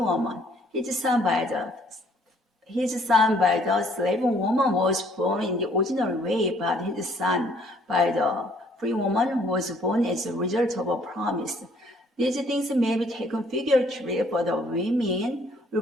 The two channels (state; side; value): normal; both; correlation 0.62